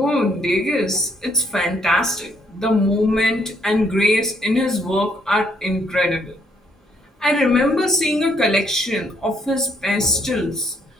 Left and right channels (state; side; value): normal; both; correlation 0.70